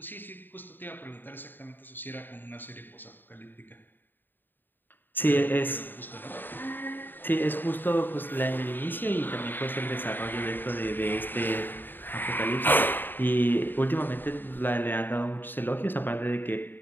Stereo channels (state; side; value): late; right; 0.093 ms